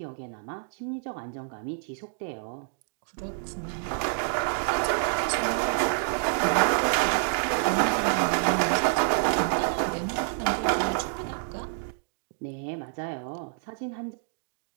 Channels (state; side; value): silent; left; digital silence